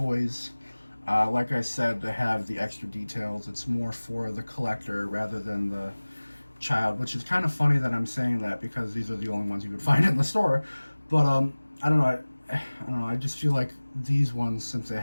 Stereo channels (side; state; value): both; inverted; correlation -1.00